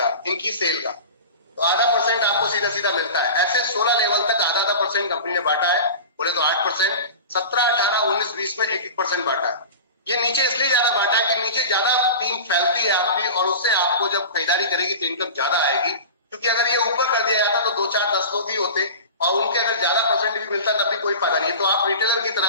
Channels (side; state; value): both; inverted; correlation -0.32